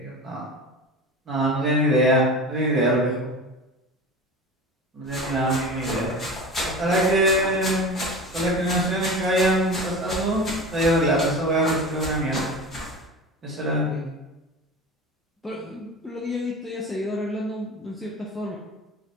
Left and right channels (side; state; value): both; normal; correlation 0.32